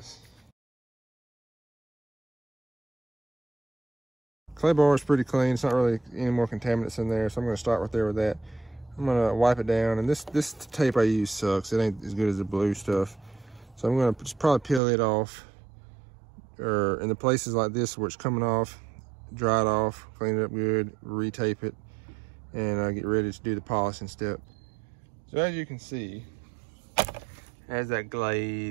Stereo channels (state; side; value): drops out; left; at 14.8 s